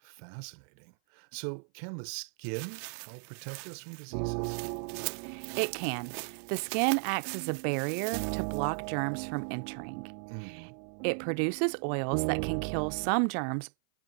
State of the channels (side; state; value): left; silent; 55 dB below the other